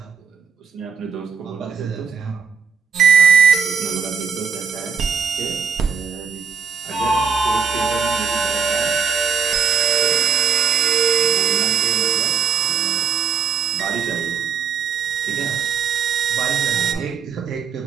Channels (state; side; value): quieter; left; 6.5 dB